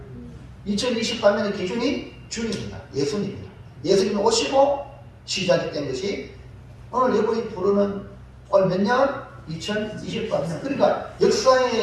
2023년의 기준이 주님입니다. 예수님입니다. 예수님이 오시고 시작이 된 것이 오늘 여러분이 부르는 오늘 몇 년? 2023년. 그러니까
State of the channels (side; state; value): both; identical; correlation 1.00